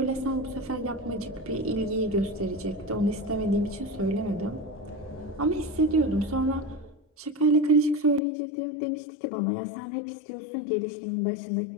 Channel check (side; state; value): right; drops out; at 8.2 s